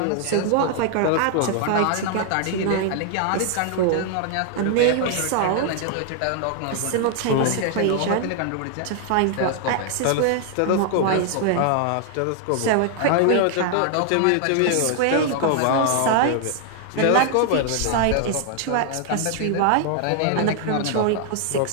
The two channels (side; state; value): both; different; correlation 0.00